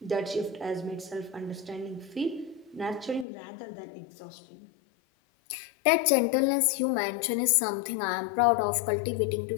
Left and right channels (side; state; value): right; drops out; at 3.2 s